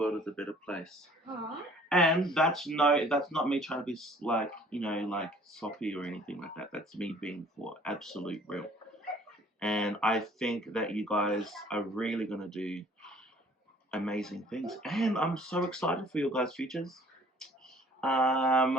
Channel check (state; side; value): normal; both; correlation 0.54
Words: a better place. And that's not me trying to be like, like soppy or anything like that. That's me being for absolute real. And I think that you guys are really gonna do amazing things. And I'm so excited for your guys' futures.